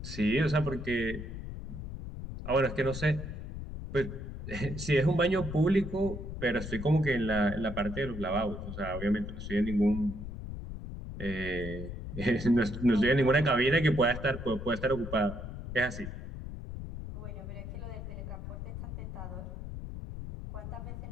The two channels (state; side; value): noise; left; rumble, 8 dB below the sound